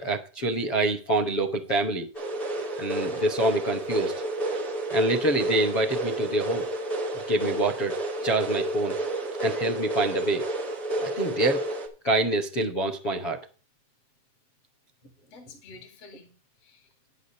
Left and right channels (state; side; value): late; right; 7.5 ms